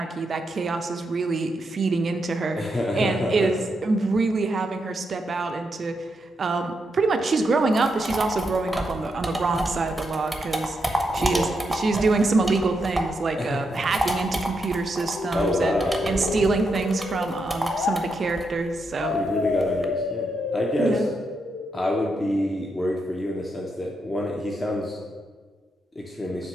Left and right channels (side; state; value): both; normal; correlation 0.83